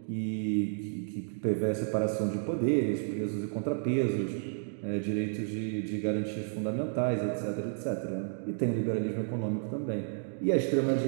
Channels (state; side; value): silent; left; digital silence